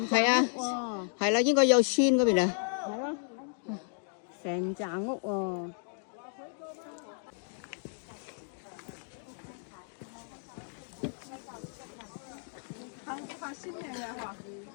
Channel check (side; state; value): right; silent; 56 dB below the other